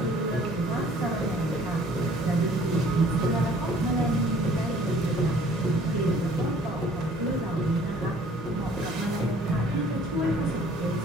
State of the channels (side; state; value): both; normal; correlation 0.55